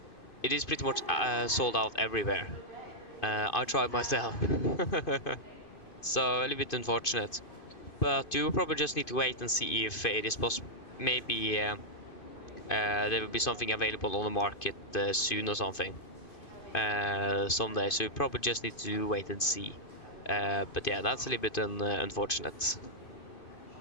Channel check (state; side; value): late; right; 2.5 ms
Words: It is pretty much sold out everywhere. I tried myself. So a little bit unfortunate. But you probably just need to wait and see if it is possible. Maybe there will be something available on the market soon or something. Someday, so you probably just need to wait and see. But yeah, that's a little bit unfortunate.